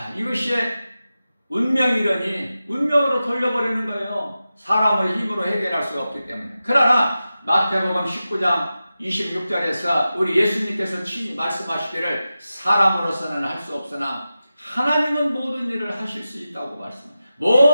이것이 운명이러니 운명으로 돌려버리는 거예요. 사람의 힘으로 해결할 수가 없기 때문에. 그러나 마태복음 19장 26절에서 우리 예수님께서 친히 말씀하시기를 사람으로서는 할 수 없으나 하나님은 모든 일을 하실 수 있다고 말씀합니다.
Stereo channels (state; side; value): inverted; both; correlation -0.93